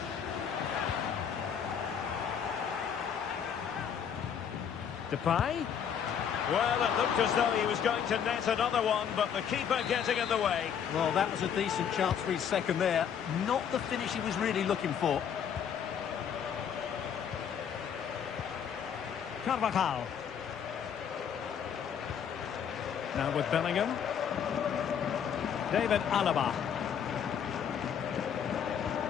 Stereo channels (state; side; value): quieter; right; 8.0 dB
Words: Depay. Well, it looked as though he was going to net another one, but the keeper getting in the way. Well, that was a decent chance for his second there. Not the finish he was really looking for. Carvajal. Now with Bellingham. David Alaba.